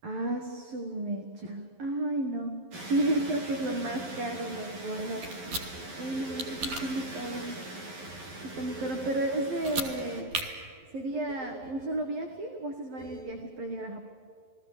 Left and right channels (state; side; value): late; left; 11 ms